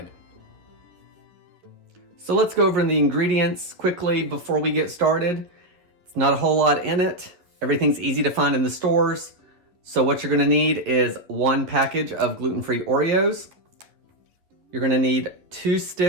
So let's go over the ingredients quickly before we get started. It's not a whole lot in it. Everything's easy to find in the stores. So what you're gonna need is 1 package of gluten-free Oreos. You're gonna need 2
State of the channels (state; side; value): late; left; 11 ms